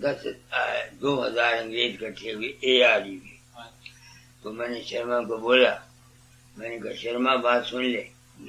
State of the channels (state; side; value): identical; both; correlation 1.00